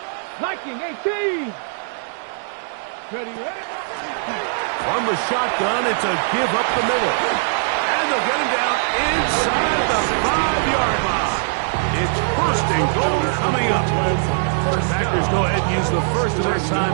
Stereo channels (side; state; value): left; silent; digital silence